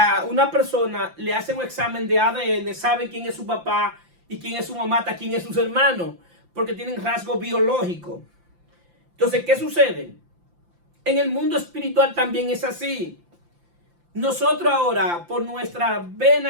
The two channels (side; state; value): left; late; 5.8 ms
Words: una persona le hacen un examen de ADN, sabe quién es su papá y quién es su mamá, hasta quién es sus hermanos, porque tienen rasgos biológicos. Entonces, ¿qué sucede? En el mundo espiritual también es así. Nosotros ahora, por nuestras